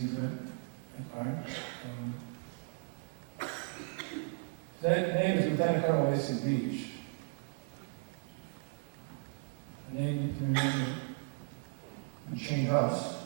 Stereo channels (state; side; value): silent; left; 54 dB below the other